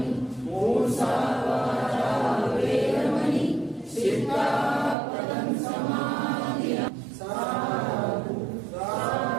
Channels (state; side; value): drops out; left; at 5.0 s